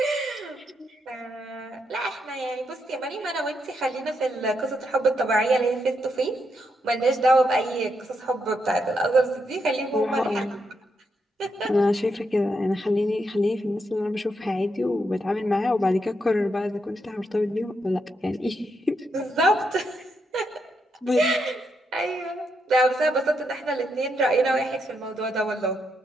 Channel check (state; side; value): normal; both; correlation 0.80